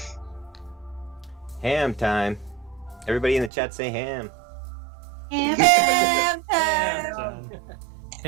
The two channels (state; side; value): drops out; left; at 3.5 s